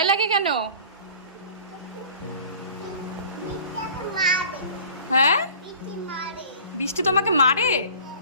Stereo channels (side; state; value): both; inverted; correlation -0.45